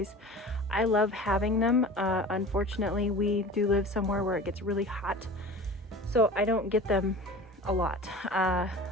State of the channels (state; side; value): normal; both; correlation 0.37